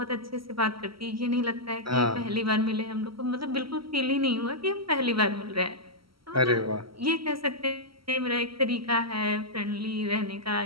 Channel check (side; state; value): left; late; 0.75 ms